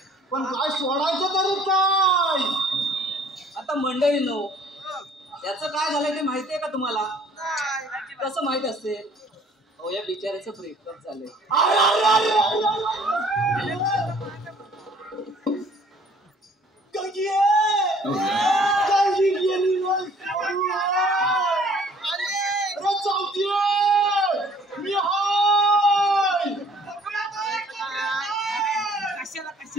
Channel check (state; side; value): normal; both; correlation 0.56